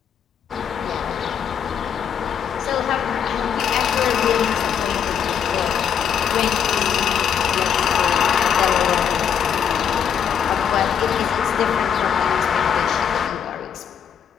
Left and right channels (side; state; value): right; quieter; 8.1 dB